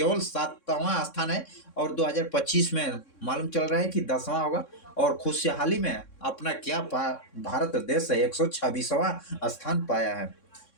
7वां स्थान है। और 2025 में मालूम चल रहा है कि 10वां होगा। और खुशहाली में अपना क्या भारत देश 126वां स्थान पाया है।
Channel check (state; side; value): late; right; 3.6 ms